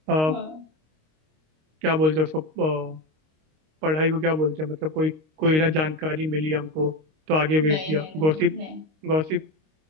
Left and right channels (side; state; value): left; late; 26 ms